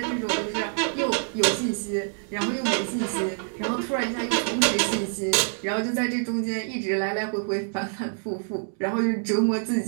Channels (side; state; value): left; silent; digital silence